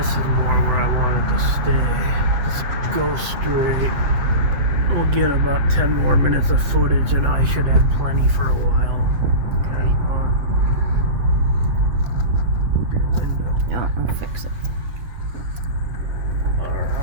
is more where I wanted to stay. Let's go straight. We'll get about 10 more minutes of footage and I should have plenty for a while. Okay. Move your window. No, I'll fix it.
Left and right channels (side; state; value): left; late; 7.7 ms